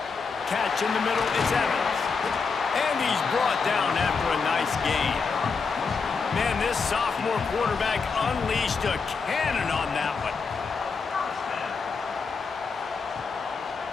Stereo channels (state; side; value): quieter; right; 5.1 dB